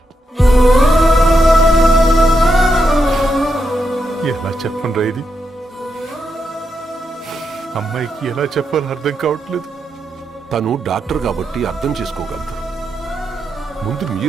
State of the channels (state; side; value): normal; both; correlation 0.84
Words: ఎలా చెప్పనురా ఇది? అమ్మాయికి ఎలా చెప్పాలో అర్థం కావట్లేదు. తను డాక్టర్ కాబట్టి అర్థం చేసుకోగలదు. ముందు